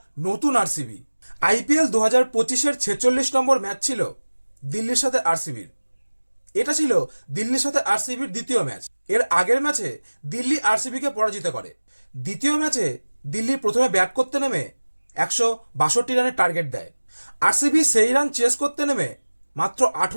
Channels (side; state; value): both; inverted; correlation -1.00